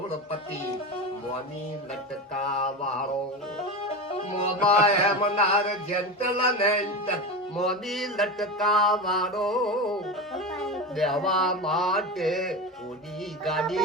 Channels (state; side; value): normal; both; correlation 0.23